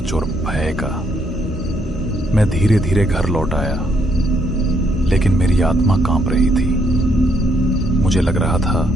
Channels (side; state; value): both; normal; correlation 0.73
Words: और भय का। मैं धीरे धीरे घर लौट आया, लेकिन मेरी आत्मा कांप रही थी। मुझे लग रहा था